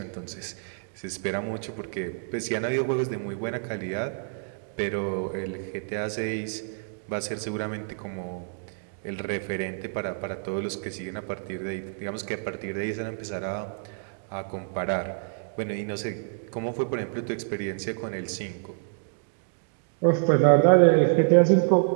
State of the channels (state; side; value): silent; left; digital silence